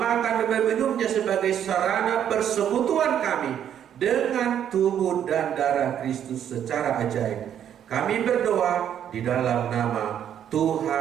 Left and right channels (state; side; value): quieter; left; 9.6 dB